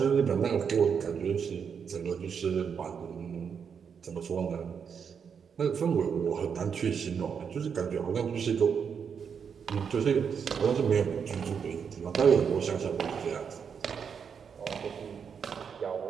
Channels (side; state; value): left; quieter; 6.8 dB